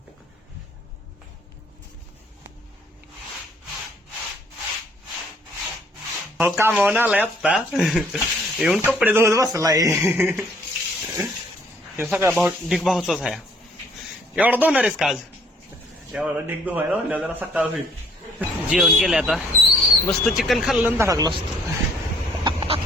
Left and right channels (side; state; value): both; normal; correlation 0.62